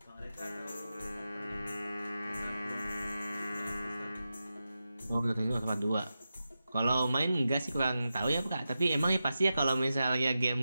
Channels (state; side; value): inverted; both; correlation -0.91